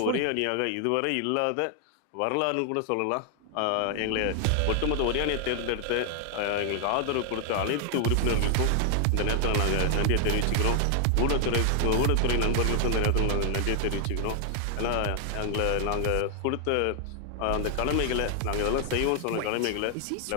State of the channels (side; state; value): both; different; correlation 0.00